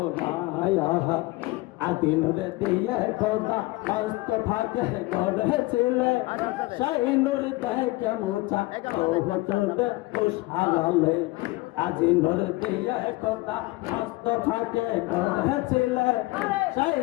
না আদিন রে দিয়ে খোদা মস্ত ফাঁকে গড়েছিলে সেই নূর দেখে মুছা ও হতলে খুশহালে আদিন রে দিয়ে খোদা মস্ত ফাঁকে গড়েছিলে সেই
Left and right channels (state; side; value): quieter; right; 21.3 dB